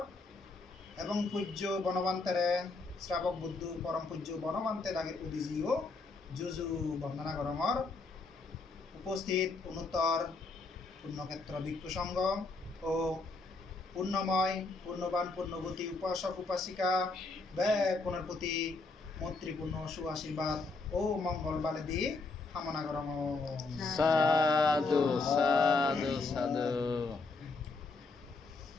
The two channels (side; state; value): right; quieter; 3.7 dB